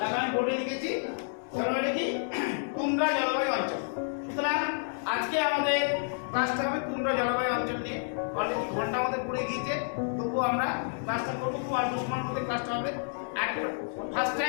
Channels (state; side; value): silent; right; 58 dB below the other